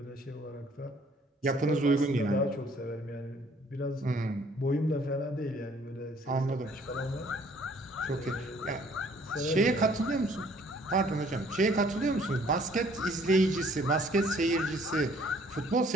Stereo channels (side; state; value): both; normal; correlation 0.59